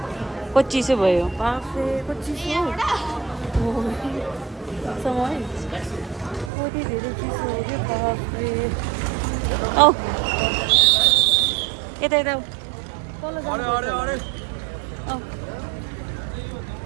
कति चिसो भयो बाफे। कति चिसो समय कति धेरै चिसो हो कि बाफे। औ यता यता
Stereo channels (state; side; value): drops out; left; at 6.5 s